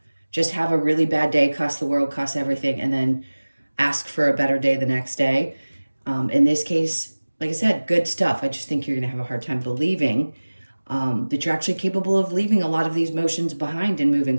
Just have a really bad day, cuss the world, cuss everything, and then ask for a better day the next day. In this case, like I said, good stuff. I just think you're going to have a hard time believing that you're actually capable of leaving a lot of these emotions behind and moving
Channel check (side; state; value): both; inverted; correlation -1.00